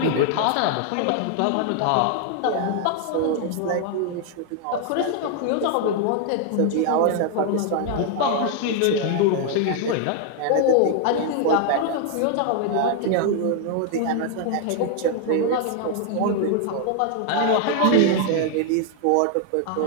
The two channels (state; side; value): different; both; correlation 0.00